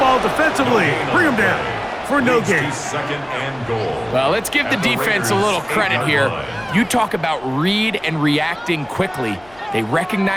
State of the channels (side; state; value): left; noise; hum, 27 dB below the sound